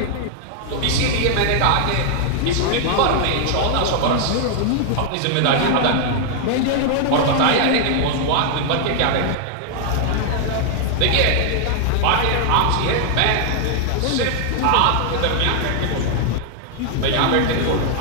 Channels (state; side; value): different; both; correlation 0.00